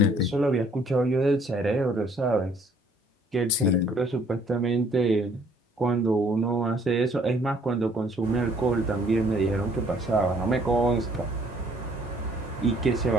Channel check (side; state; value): both; normal; correlation 0.61